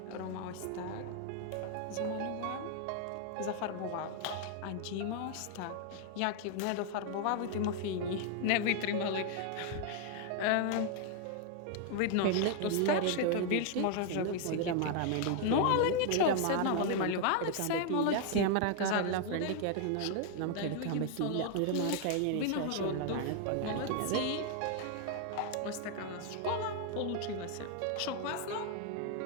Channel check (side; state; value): both; different; correlation 0.00